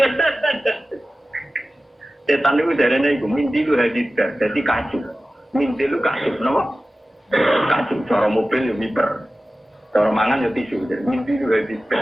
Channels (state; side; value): normal; both; correlation 0.95